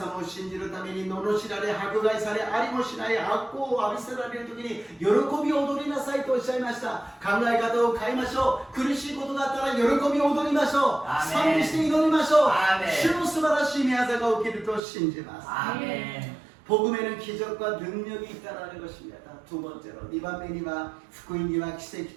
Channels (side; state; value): left; drops out; at 14.8 s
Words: を信じるために罵られ、迫害され、ありもしない悪行を浴びせられるときに喜びを踊りなさいとおっしゃいました。考え方を変えましょう。苦しいことがあったら喜びを踊りましょう。アーメン。賛美して祈りましょう。アーメン。主の素晴らしい御業が起きると信じます。 아멘. 복음에는 기적과 능력이 있다라는 것입니다. 두 번째로, 2番目には福音には奇